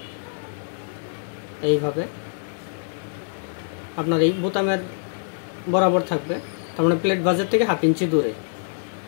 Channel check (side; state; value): right; silent; digital silence